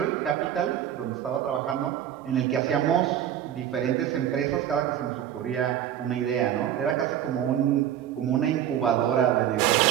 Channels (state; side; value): quieter; left; 10.6 dB